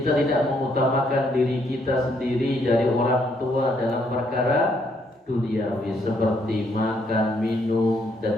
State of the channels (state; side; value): normal; both; correlation 0.71